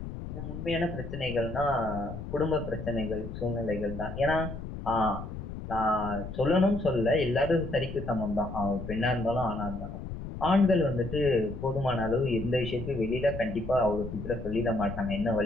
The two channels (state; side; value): noise; left; rumble, 8 dB below the sound